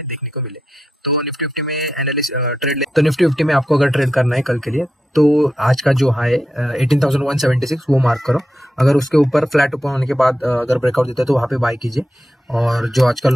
देखने को मिले। तो निफ्टी 50 में तो निफ्टी 50 में आपको अगर ट्रेड करना है कल के लिए तो आज का जो हाई 18,176 वो मार्क करो। अगर उसके ऊपर फ्लैट ओपन होने के बाद अगर ब्रेकआउट देता है तो वहाँ पे बाय कीजिए। और जो आज का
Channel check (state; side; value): normal; both; correlation 0.87